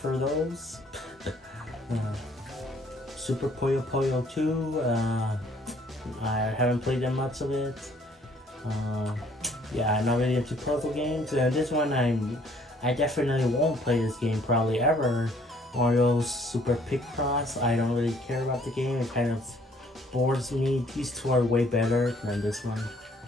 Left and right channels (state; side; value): normal; both; correlation 0.61